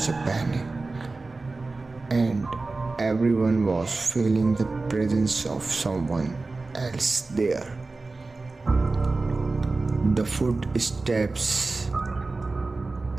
a panic. And everyone was feeling the presence of someone else there. The footsteps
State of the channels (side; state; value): left; quieter; 3.5 dB